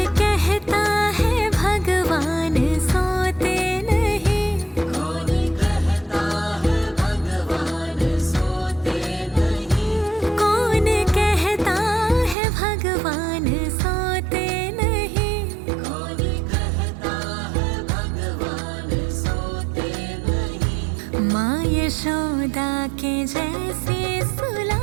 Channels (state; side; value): drops out; left; at 12.4 s